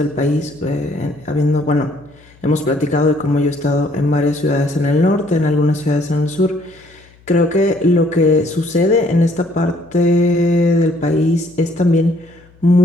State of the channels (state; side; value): noise; left; hum, 28 dB below the sound